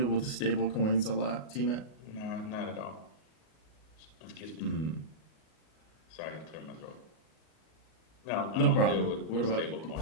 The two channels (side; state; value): right; late; 38 ms